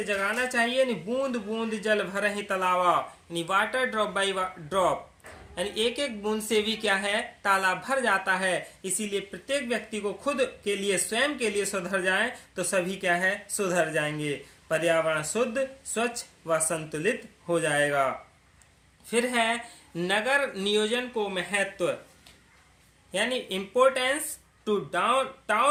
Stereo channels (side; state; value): both; identical; correlation 1.00